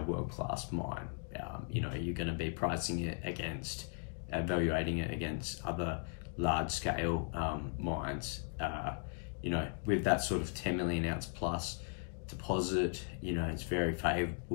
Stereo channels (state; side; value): silent; right; 53 dB below the other